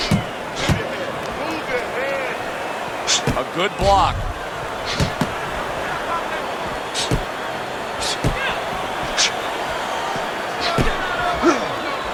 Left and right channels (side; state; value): both; identical; correlation 1.00